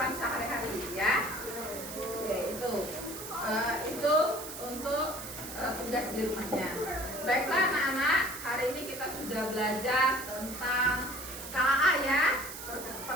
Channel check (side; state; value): right; noise; hiss, 10 dB below the sound